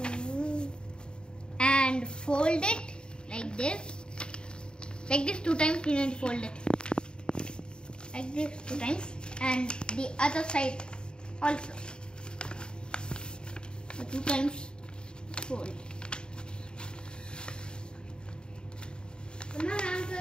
And fold it like this. Like this 2 times you need to fold it. Like this 2 times and the other side also. So 2 times fold.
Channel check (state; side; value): late; right; 0.049 ms